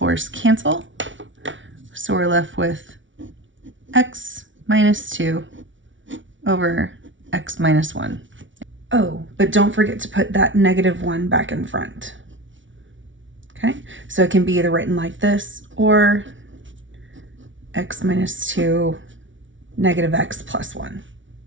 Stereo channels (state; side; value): late; left; 0.56 ms